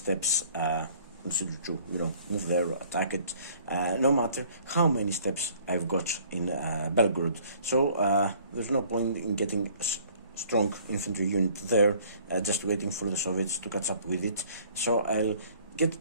consider to, move there, attack it, no matter how many steps I've got in Belgorod. So, there's no point in getting a strong infantry unit there, just waiting for the Soviets to catch up with it. So, I'll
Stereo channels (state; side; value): inverted; both; correlation -0.56